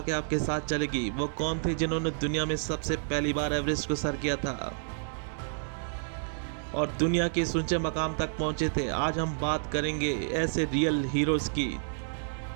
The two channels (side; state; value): left; silent; digital silence